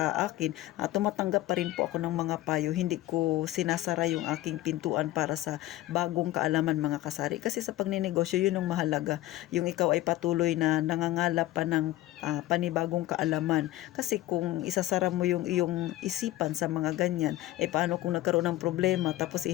akin. Tumatanggap pa rin po ako ng mga payo. Hindi ko sinasara yung aking pintuan para sa bagong kaalaman mga kasari. Kasi sa pagninegosyo, yun ang mahalaga. Yung ikaw ay patuloy na nangangalap pa ng panibagong kaalaman. Kasi kung isasara mo yung iyong isipan sa mga ganyan, paano kung nagkaroon ng problema tapos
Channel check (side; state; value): right; quieter; 15.8 dB